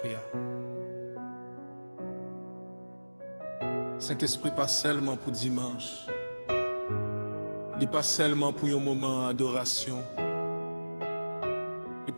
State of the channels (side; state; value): both; inverted; correlation -1.00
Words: Saint-Esprit pas seulement pour dimanche. Il pas seulement pour un moment d'adoration. Il